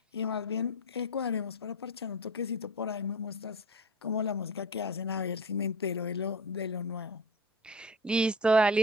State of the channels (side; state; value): both; normal; correlation 0.30